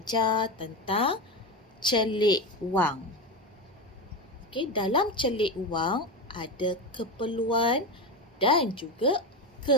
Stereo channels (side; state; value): both; normal; correlation 0.18